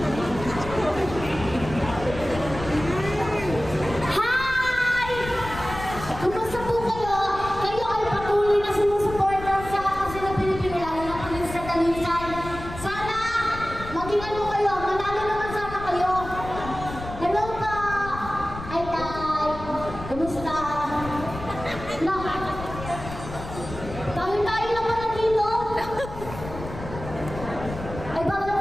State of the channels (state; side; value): noise; left; rumble, 11 dB below the sound